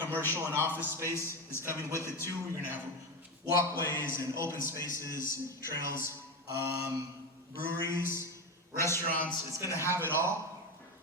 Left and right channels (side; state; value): both; normal; correlation 0.17